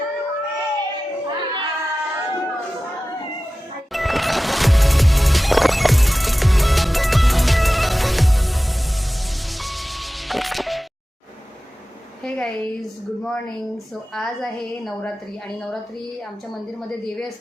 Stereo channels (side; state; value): both; normal; correlation 0.95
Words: हे गाईज, गुड मॉर्निंग. सो आज आहे नवरात्री आणि नवरात्री आमच्या मंदिरमध्ये देवी